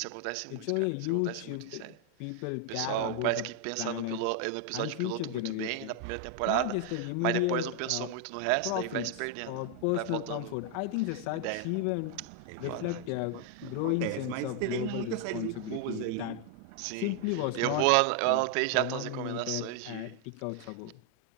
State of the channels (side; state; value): both; different; correlation 0.00